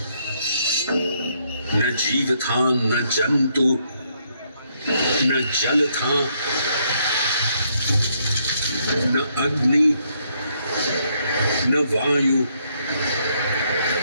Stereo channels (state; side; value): inverted; both; correlation -0.73